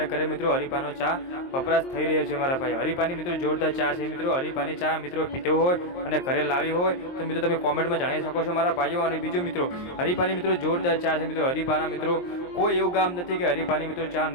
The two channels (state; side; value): late; right; 23 ms